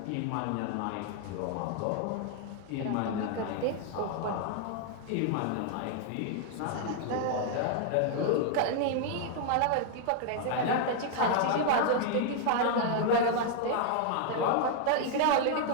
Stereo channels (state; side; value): different; both; correlation 0.00